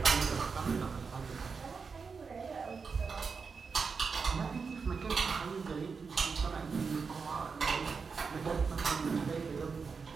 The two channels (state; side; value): quieter; left; 5.2 dB